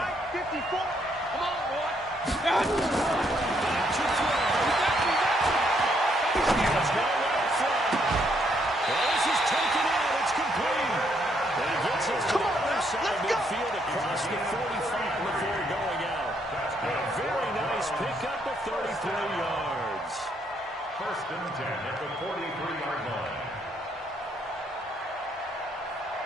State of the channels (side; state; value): both; normal; correlation 0.72